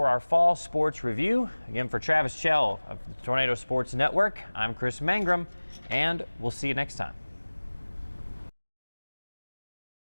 our fall sports review. Again, for Travis Chell of the Tornado Sports Network, I'm Kris Mangrum, and we'll see you next time.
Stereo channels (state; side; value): inverted; both; correlation -1.00